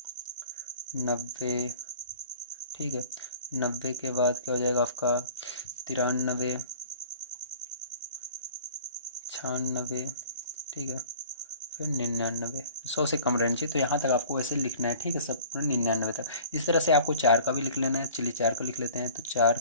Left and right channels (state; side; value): inverted; both; correlation -0.46